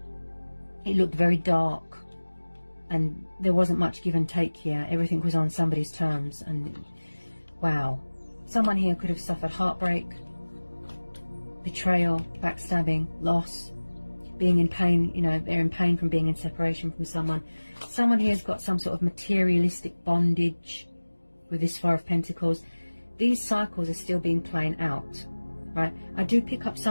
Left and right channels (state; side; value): inverted; both; correlation -1.00